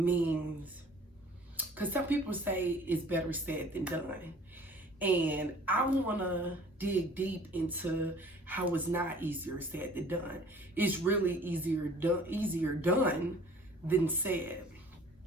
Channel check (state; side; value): normal; both; correlation 0.50